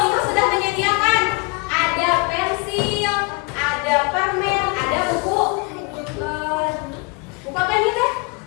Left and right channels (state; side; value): quieter; right; 29.7 dB